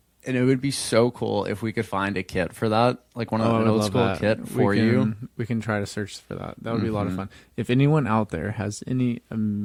And it would be so cool if we could find a kit for that, like one of I an would old love school that. kit for you. We can try to search for that. That would be a lot of fun. If anyone out there has any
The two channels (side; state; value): both; identical; correlation 1.00